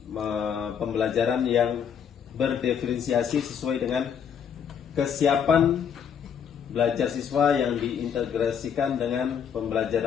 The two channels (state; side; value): quieter; right; 7.7 dB